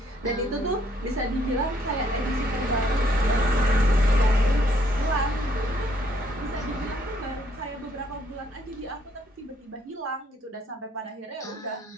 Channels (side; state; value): both; normal; correlation 0.67